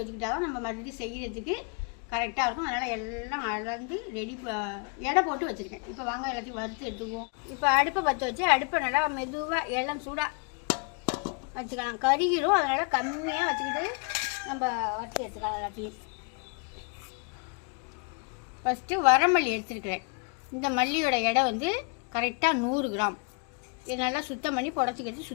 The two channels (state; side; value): quieter; right; 35.6 dB